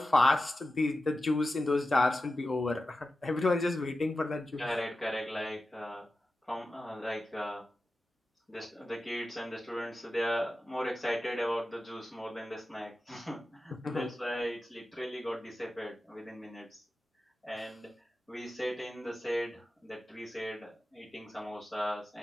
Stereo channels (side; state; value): both; normal; correlation 0.93